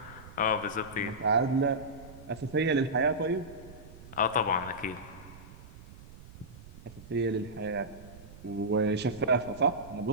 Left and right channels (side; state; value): right; noise; rumble, 18 dB below the sound